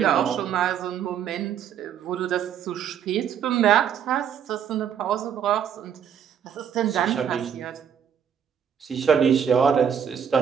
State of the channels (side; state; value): left; quieter; 8.3 dB